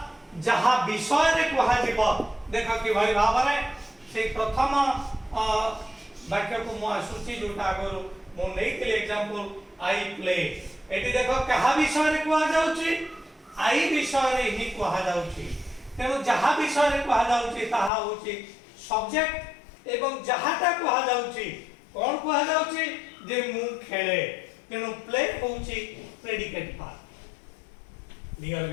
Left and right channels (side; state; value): right; drops out; at 17.9 s